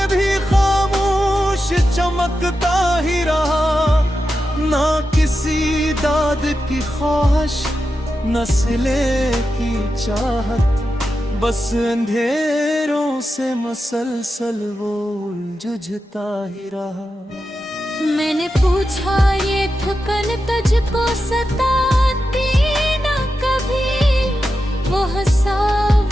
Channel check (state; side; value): normal; both; correlation 0.90